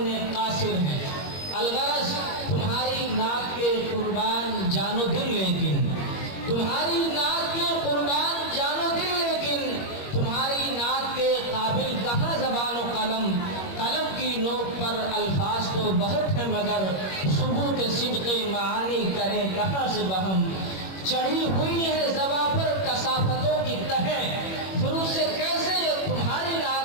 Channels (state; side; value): late; right; 21 ms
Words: कासिर हैं। अलगरज तुम्हारी नाक के कुर्बान जानो दिल, लेकिन तुम्हारी नाक के कुर्बान जानो दिल, लेकिन तुम्हारी नाक के काबिल कहाँ ज़बान व कलम। कलम की नोक पर अल्फाज तो बहुत है, मगर सुबूत सिद्क़े मानी करें कहाँ से बहम। चढ़ी हुई है ज़बा पर कसाफतों की तहें, फिर उसे कैसे ये तुम्हारी नाक